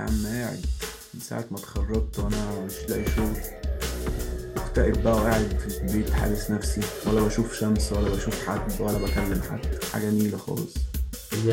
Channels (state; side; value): identical; both; correlation 1.00